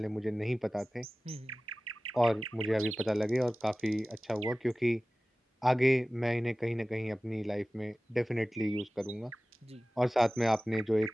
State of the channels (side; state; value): both; normal; correlation 0.97